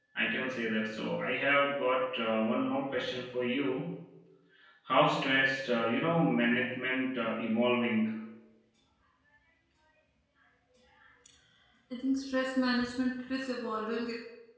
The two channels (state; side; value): identical; both; correlation 1.00